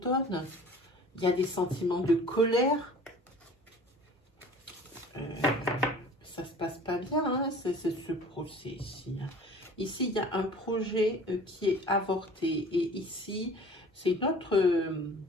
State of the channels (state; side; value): normal; both; correlation 0.46